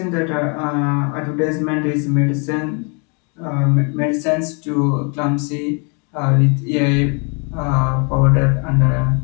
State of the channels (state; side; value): quieter; right; 35.2 dB